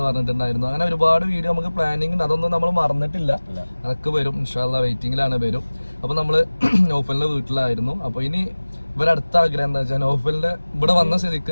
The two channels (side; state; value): both; inverted; correlation -1.00